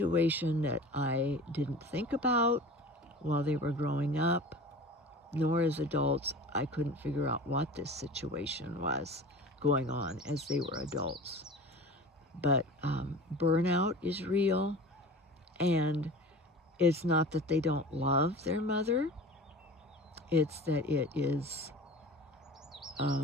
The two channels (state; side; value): normal; both; correlation 0.38